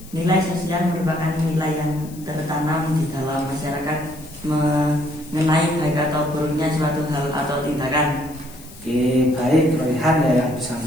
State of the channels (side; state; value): left; noise; hiss, 20 dB below the sound